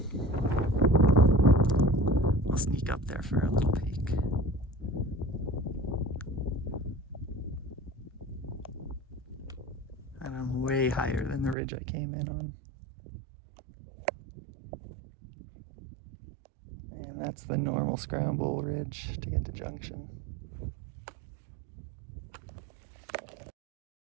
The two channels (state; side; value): drops out; left; at 11.6 s